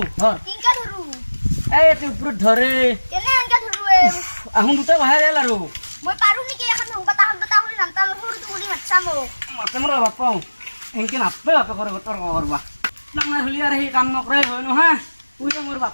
ধৰ কিনকা ধৰু এই এতে ওপৰত ধৰে কেনে আনকা ধৰু আহুন দুটা বাহিৰ গেল আৰু মই পাৰো নেকি এখন সংকটা হলি নামতা সৰুটো কৰি মাতছা মোক মাতে মোৰ বাপাও এনকে নাপে বাপে কৰে তৰ্ক কৰবা ডাঙৰ হলি আৰু সেই কাম নকৰাই হয় নহয় তুই মোৰ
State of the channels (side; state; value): both; inverted; correlation -1.00